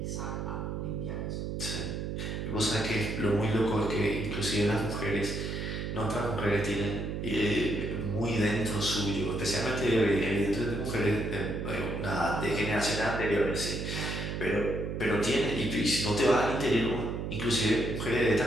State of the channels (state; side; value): noise; right; hum, 4 dB below the sound